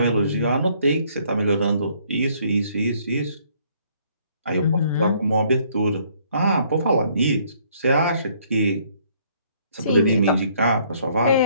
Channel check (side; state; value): both; inverted; correlation -0.64